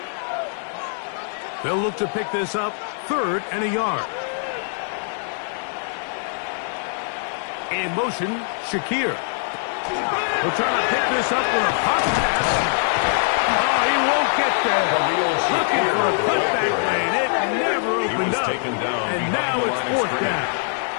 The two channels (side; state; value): right; silent; digital silence